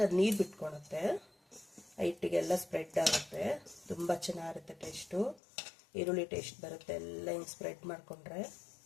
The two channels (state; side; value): drops out; right; at 5.4 s